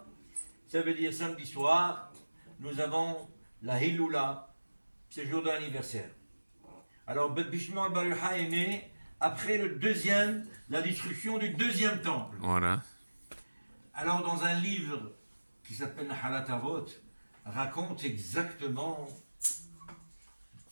ça veut dire samedi soir, nous avons la Hiloula, c'est le jour de l'anniversaire. Alors Rabbi Shimon Bar Yochai est né après la destruction du deuxième temple. Voilà. Alors dans un livre qui s'appelle Nahalat Avot, raconte exactement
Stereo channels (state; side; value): inverted; both; correlation -1.00